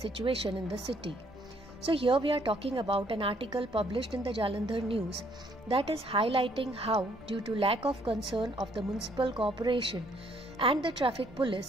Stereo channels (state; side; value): normal; both; correlation 0.66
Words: in the city. So here we are talking about an article published in the Jalandhar News that is highlighting how, due to lack of concern of the municipal corporation and the traffic